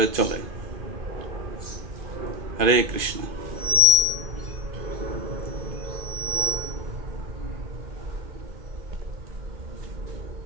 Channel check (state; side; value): late; left; 2.5 ms